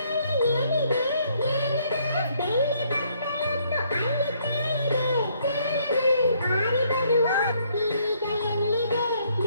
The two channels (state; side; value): inverted; both; correlation -0.68